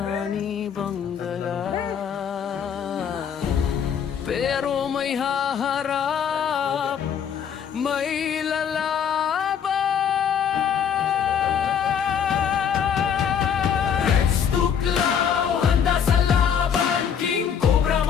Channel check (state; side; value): quieter; right; 7.9 dB